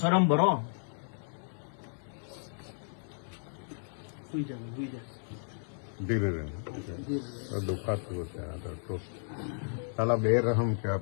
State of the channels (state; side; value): silent; right; 56 dB below the other